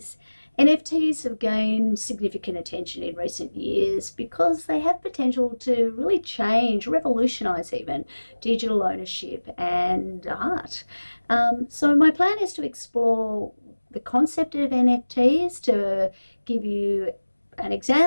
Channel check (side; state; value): both; inverted; correlation -1.00